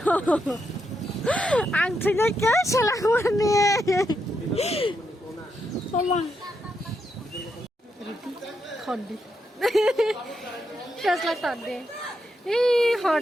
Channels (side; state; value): both; normal; correlation 0.82